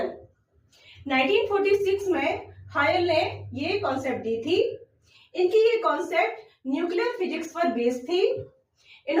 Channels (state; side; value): identical; both; correlation 1.00